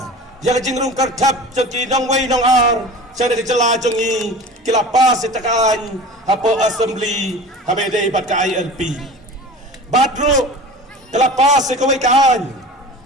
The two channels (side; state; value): both; normal; correlation 0.37